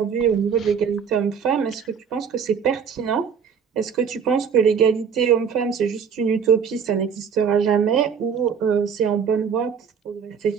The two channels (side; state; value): left; quieter; 6.8 dB